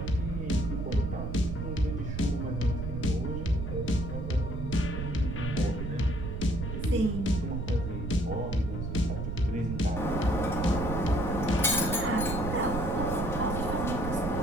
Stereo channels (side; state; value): right; noise; rumble, 4 dB below the sound